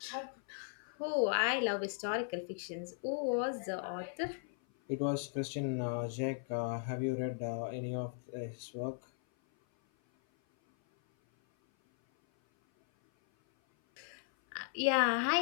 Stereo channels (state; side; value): silent; right; 53 dB below the other